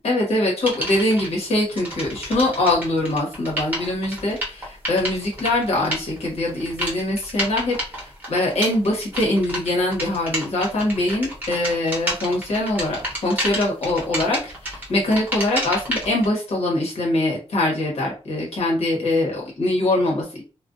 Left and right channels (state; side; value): normal; both; correlation 0.57